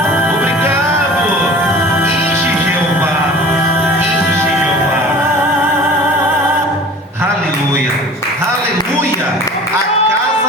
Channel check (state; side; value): normal; both; correlation 0.42